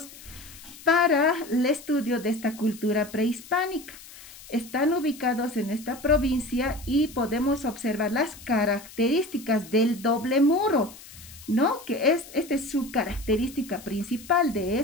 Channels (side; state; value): left; noise; hiss, 18 dB below the sound